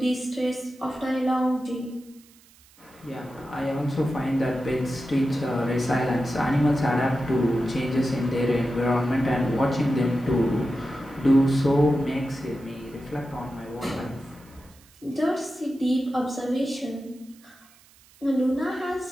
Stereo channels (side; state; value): right; noise; hiss, 27 dB below the sound